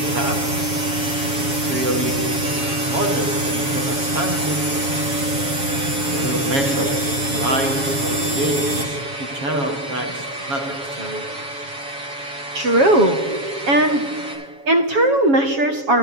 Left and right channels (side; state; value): left; late; 7.2 ms